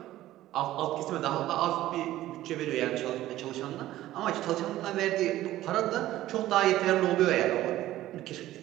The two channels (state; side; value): quieter; left; 14.8 dB